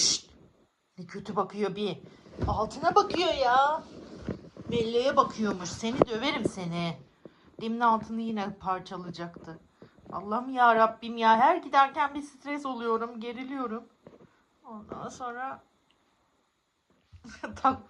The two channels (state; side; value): identical; both; correlation 1.00